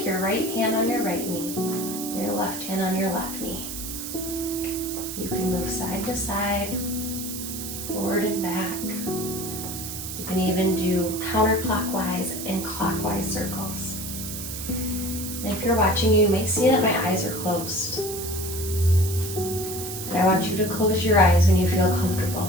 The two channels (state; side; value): noise; right; hiss, 7 dB below the sound